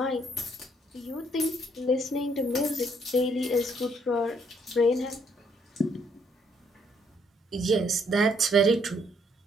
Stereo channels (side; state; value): both; normal; correlation 0.69